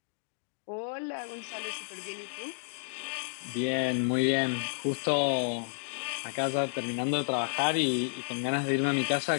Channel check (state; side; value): silent; right; digital silence